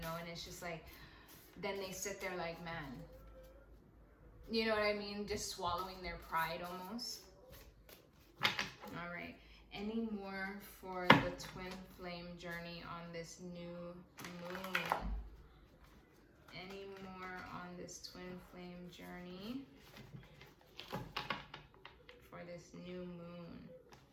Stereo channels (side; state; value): both; identical; correlation 1.00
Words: And it's just like, then they sit there like, man, you know what I mean, just swallowing their pride almost. All right, any more for the twin flame journey on this new moon? Any more on this twin flame journey for this new moon?